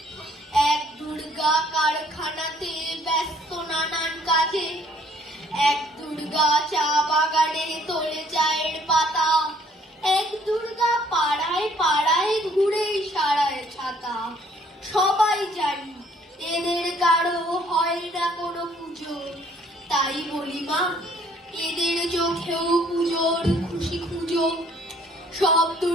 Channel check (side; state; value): both; normal; correlation 0.62